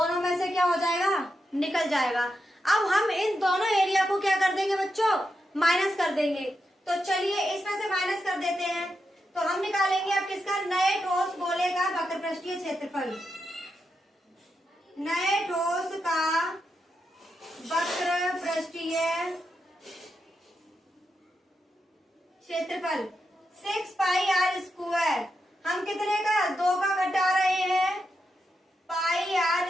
में से क्या हो जाएगा, निकल जाएगा। अब हम इन दोनों एरिया को क्या कर देंगे बच्चों, माइनस कर देंगे। तो चलिए इसमें से माइनस कर देते हैं। तो हम निकालेंगे अब किसका, नए ठोस गोले का वक्र पृष्ठीय क्षेत्रफल। नए ठोस का वक्र पृष्ठीय क्षेत्रफल 6πr²। हम कितने का, 2 का घटा रहे हैं,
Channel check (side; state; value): both; normal; correlation 0.86